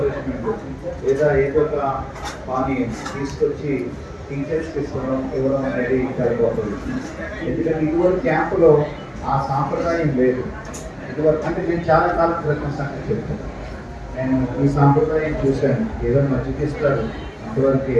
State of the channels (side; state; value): both; identical; correlation 1.00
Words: లేదా ఏదో ఒక పానీయం తీసుకొచ్చి టీచర్స్కి ఇవ్వడం అనేది సరిపోతుంది. ఎందుకంటే ఇటువంటి క్యాంపులో ఆ సాంప్రదాయం లేదు. ఇదివరకు అంటే నేను చాలా కాలం క్రితం సంగతి చెప్తాను. నేను ఈ సాంప్రదాయం చూశాను. ఏదో మజ్జిగ ఇస్తారు, అంతవరకే